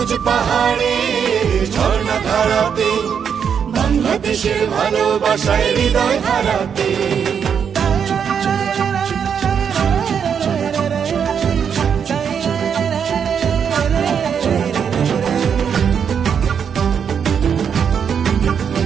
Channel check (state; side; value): quieter; left; 7.4 dB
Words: পাহাড়ের ঝর্ণা ধারাতে, বাংলাদেশের ভালোবাসায় হৃদয় হারাতে।